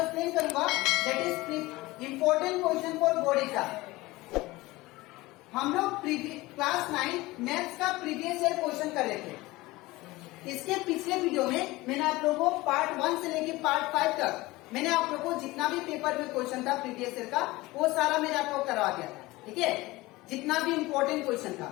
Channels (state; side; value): quieter; right; 20.1 dB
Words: करूंगा that is important question for board exam. हम लोग क्लास 9 मैथ्स का प्रीवियस ईयर क्वेश्चन कर रहे थे। इसके पिछले वीडियो में मैंने आप लोगों को पार्ट 1 से लेकर पार्ट 5 तक मैंने आप लोगों को जितना भी पेपर में क्वेश्चन था प्रीवियस ईयर का वो सारा मैंने आपको करवा दिया था। ठीक है, जितना भी इम्पोर्टेंट क्वेश्चन